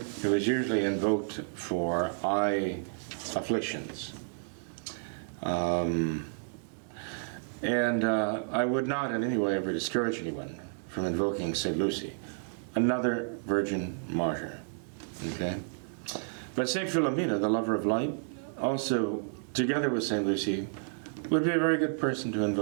who is usually invoked for eye afflictions. And I would not in any way ever discourage anyone from invoking Saint Lucy, another virgin martyr. Okay? But Saint Philomena, the lover of light, also, together with Saint Lucy, would be a very good person to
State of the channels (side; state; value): left; silent; digital silence